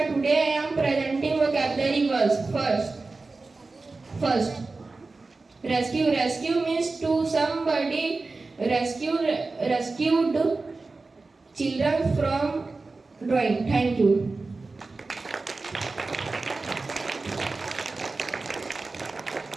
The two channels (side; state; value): left; quieter; 3.7 dB